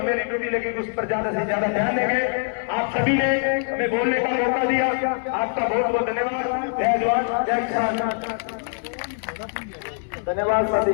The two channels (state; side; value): silent; right; 61 dB below the other